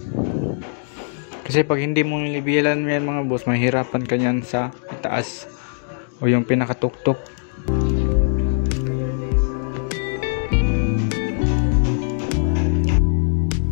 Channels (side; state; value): right; silent; digital silence